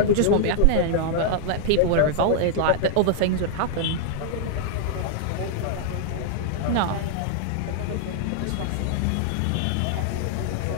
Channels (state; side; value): different; both; correlation 0.00